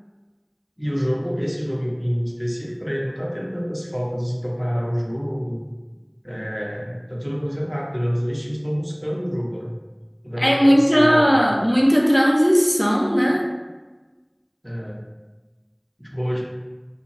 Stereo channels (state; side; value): identical; both; correlation 1.00